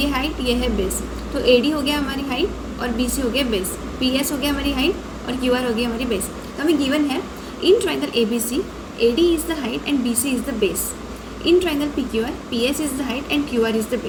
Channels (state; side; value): identical; both; correlation 1.00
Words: है हाइट, ये है बेस। तो AD हो गया हमारी हाइट और BC हो गया बेस। PS हो गया हमारी हाइट और QR हो गई हमारी बेस। तो हमें गिवन है in triangle ABC AD is the height and BC is the base. In triangle PQR PS is the height and QR is the